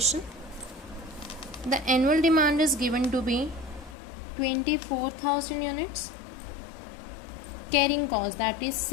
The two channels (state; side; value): drops out; right; at 4.0 s